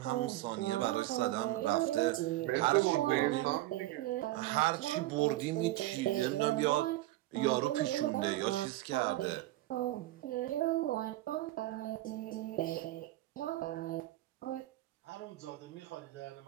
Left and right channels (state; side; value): quieter; left; 16.6 dB